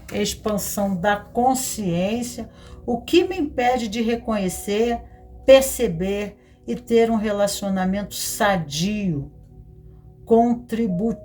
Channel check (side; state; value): both; identical; correlation 1.00